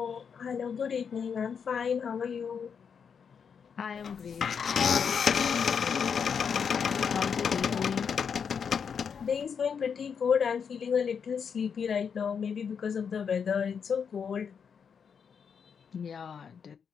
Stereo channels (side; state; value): right; quieter; 6.7 dB